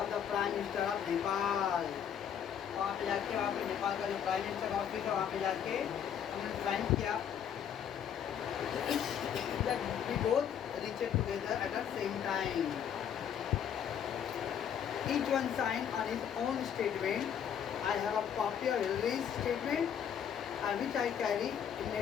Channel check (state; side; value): quieter; right; 8.7 dB